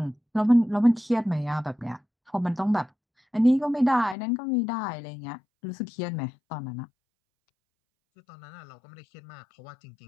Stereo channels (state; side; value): drops out; right; at 4.2 s